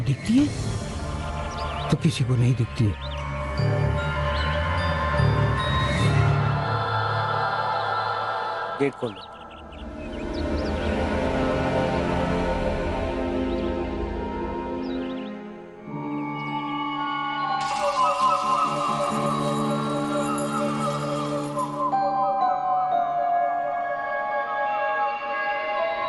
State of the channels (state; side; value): identical; both; correlation 1.00